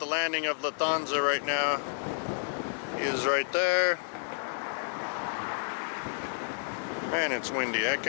landing of Lufthansa right now. He is right there. Man, it's windy. I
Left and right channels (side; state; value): right; silent; 57 dB below the other